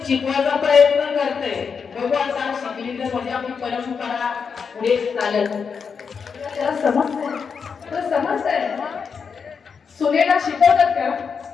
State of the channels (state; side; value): quieter; right; 6.0 dB